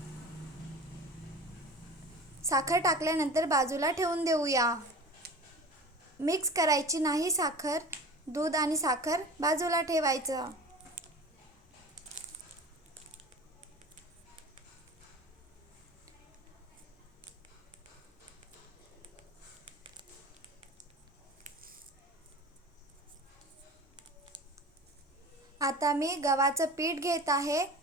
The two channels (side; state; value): both; normal; correlation 0.37